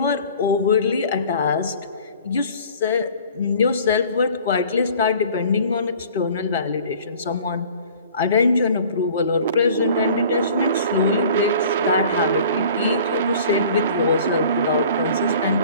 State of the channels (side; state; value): both; inverted; correlation -0.48